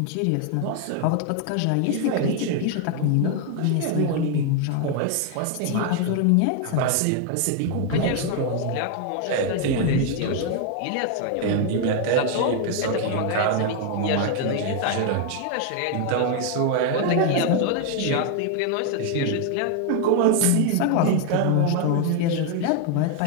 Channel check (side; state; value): both; different; correlation 0.00